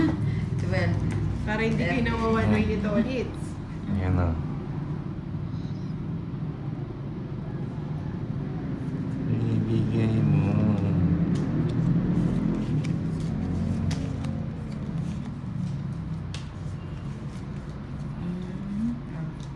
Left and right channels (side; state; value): both; identical; correlation 1.00